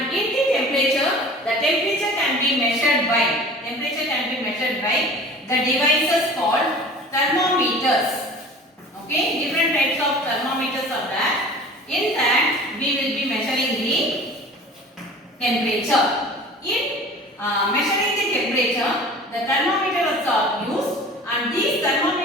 in the temperature can be measured by the devices called thermometers. Okay, different types of thermometers are there. In that, we will be measuring the temperature. In measuring the temperature, the thermometers are used, and these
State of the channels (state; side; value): normal; both; correlation 0.42